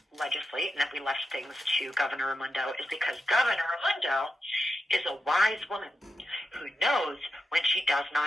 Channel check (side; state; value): both; normal; correlation 0.87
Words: legislate and that we left things to Governor Raimondo is because Governor Raimondo is a wise woman who knows when she does